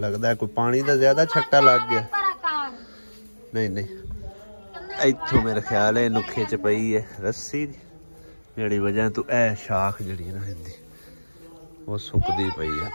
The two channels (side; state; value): both; inverted; correlation -1.00